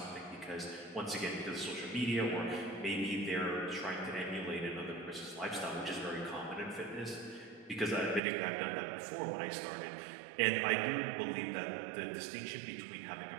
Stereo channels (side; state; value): left; drops out; at 8.2 s